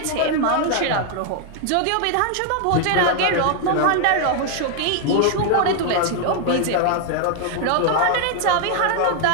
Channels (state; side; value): different; both; correlation 0.00